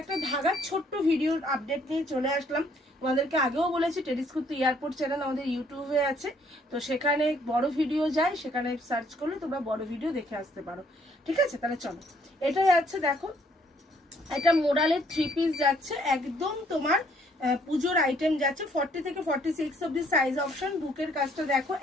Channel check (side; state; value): both; normal; correlation 0.65